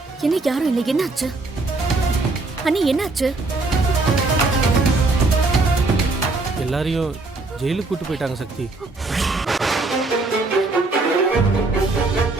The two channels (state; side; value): quieter; left; 3.4 dB